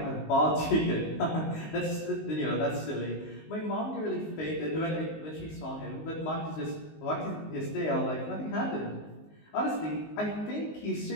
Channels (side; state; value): right; late; 19 ms